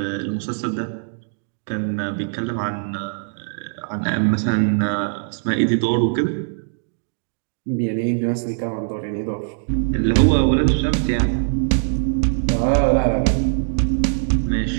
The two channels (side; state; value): left; silent; digital silence